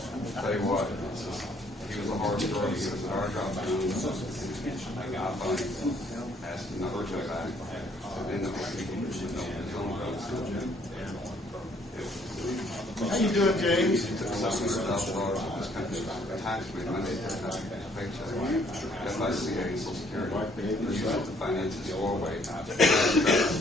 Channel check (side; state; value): both; normal; correlation 0.64